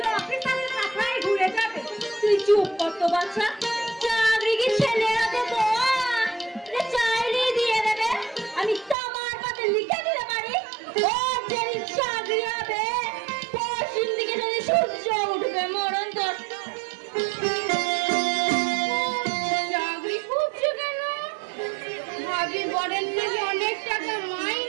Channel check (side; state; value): left; drops out; at 9.0 s